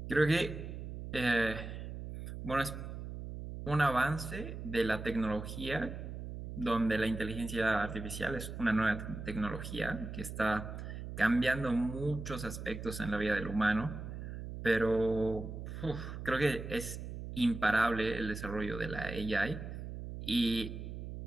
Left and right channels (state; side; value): noise; right; hum, 8 dB below the sound